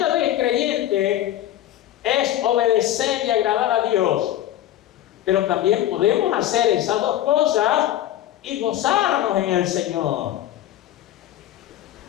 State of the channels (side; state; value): right; quieter; 12.7 dB